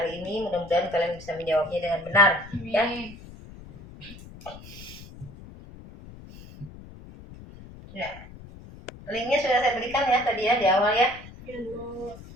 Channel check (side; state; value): left; noise; rumble, 17 dB below the sound